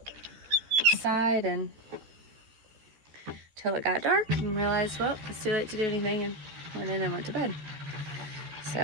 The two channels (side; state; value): left; late; 14 ms